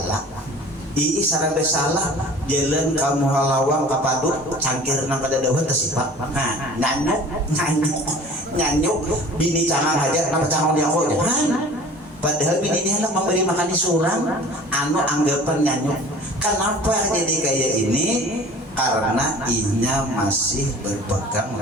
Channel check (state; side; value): normal; both; correlation 0.45